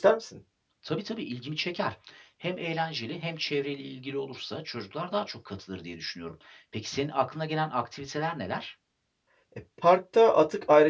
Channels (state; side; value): identical; both; correlation 1.00